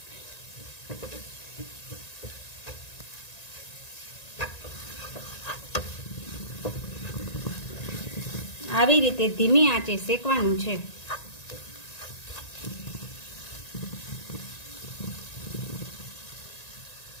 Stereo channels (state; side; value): late; right; 1.9 ms